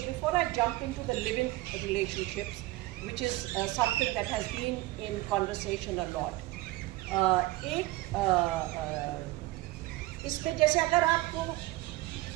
before I jump into the living relationships, which is something that has been in conversation a lot, इसमें जैसे अगर आपको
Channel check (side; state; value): left; quieter; 18.8 dB